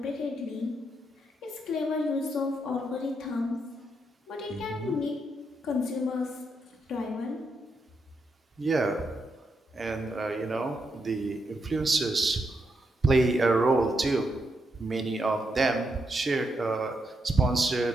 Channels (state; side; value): normal; both; correlation 0.81